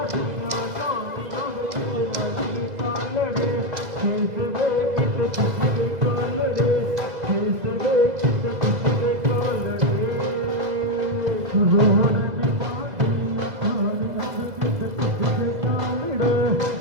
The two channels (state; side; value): late; left; 2.0 ms